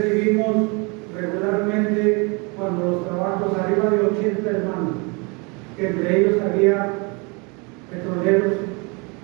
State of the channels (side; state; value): left; quieter; 30.5 dB